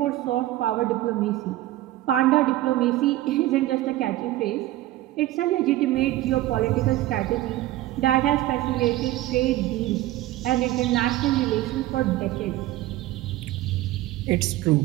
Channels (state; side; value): quieter; left; 15.8 dB